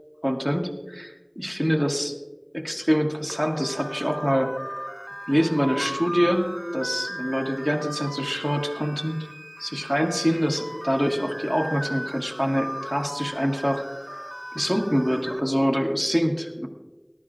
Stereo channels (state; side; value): identical; both; correlation 1.00